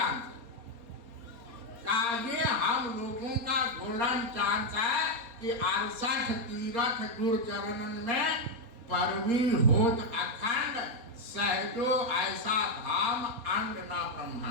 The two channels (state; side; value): late; left; 4.2 ms